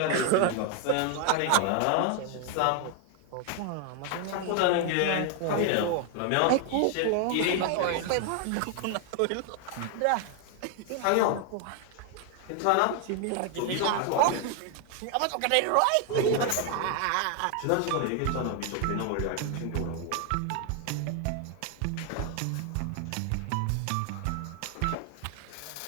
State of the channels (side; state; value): both; different; correlation 0.00